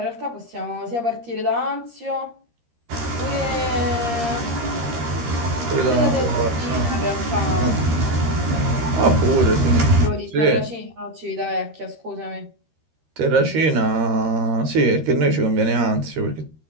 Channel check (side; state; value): left; late; 13 ms